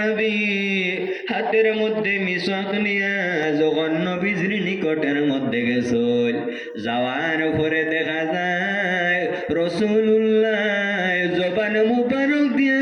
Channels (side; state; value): both; identical; correlation 1.00